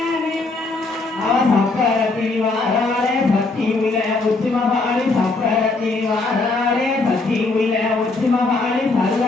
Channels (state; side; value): quieter; right; 3.5 dB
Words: சப்பரத்தில் வாராளே சக்தி உள்ள உச்சிமகாளி சப்பரத்தில் வாராளே சக்தி உள்ள உச்சிமகாளி